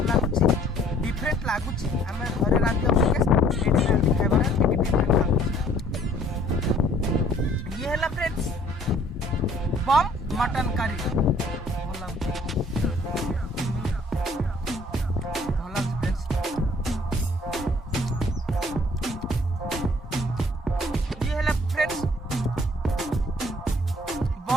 लगुच डिफरेंट लगुच आम घर रांधि खाइबार डिफरेंट लगुच। ये है फ्रेंड्स बम मटन करी भल लगुच फ्रेंड्स। ये है फ्रेंड्स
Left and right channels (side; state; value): both; normal; correlation 0.58